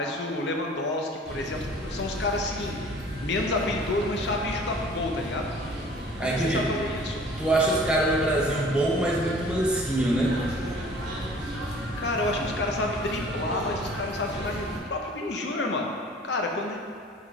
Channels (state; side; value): normal; both; correlation 0.49